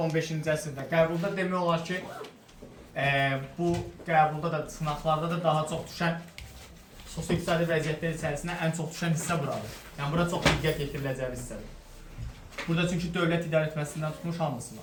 əsrdə qəbulda demək olar ki, bu qəbulda da, sınaqlarda da daha çox düşən sosio-iqtisadi vəziyyətlər içərisində ən çox düşən hissə buradır. Yəni, bura çox diqqət yetiriləcəyi hissədir. Burada çünki dövlət idarə etməsindən tutmuş hamısı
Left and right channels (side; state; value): both; identical; correlation 1.00